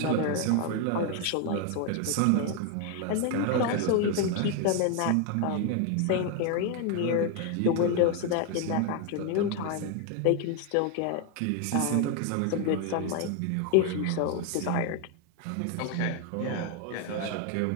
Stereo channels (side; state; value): both; different; correlation 0.01